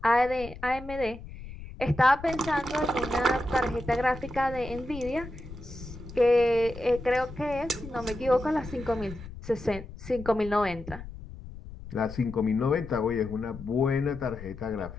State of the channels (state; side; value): noise; left; rumble, 13 dB below the sound